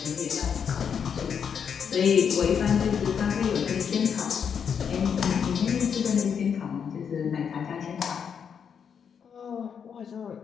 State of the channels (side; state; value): right; quieter; 7.2 dB